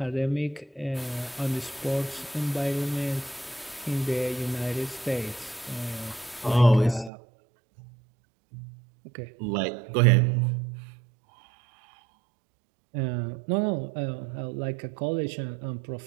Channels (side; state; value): left; drops out; at 7.1 s